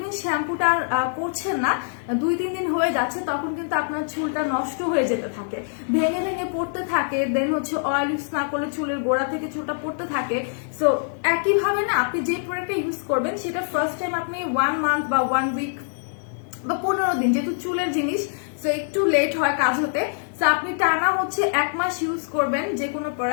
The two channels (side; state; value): right; silent; digital silence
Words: শ্যাম্পুটা করছেন না, 2-3 দিন হয়ে যাচ্ছে, তখন কিন্তু আপনার চুলটা নষ্ট হয়ে যেতে থাকে, ভেঙে ভেঙে পড়তে থাকে, দেন হচ্ছে অয়েল ইউজ না করলে চুলের গোড়া থেকে চুলটা পড়তে থাকে। সো একইভাবে না, আপনি যে প্রোডাক্টটা ইউজ করবেন সেটা ফার্স্ট টাইম আপনি 1 মান্থ বা 1 উইক বা 15 দিন, যেহেতু চুলের জিনিস সো একটু লেট হয় কাজ হতে, সো আপনি টানা হচ্ছে 1 মাস ইউজ করবেন যে কোনো